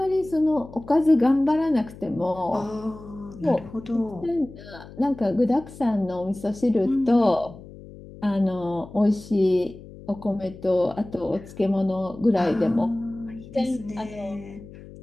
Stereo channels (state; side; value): noise; left; hum, 17 dB below the sound